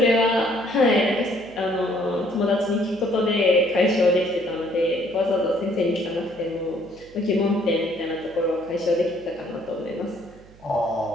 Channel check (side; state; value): right; noise; hum, 24 dB below the sound